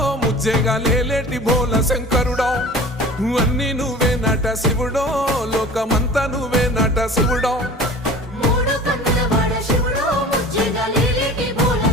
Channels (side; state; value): both; normal; correlation 0.40